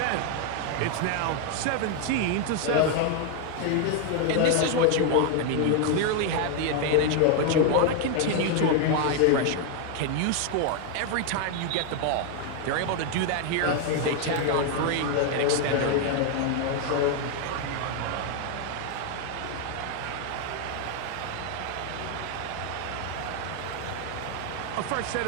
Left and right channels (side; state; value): both; different; correlation 0.01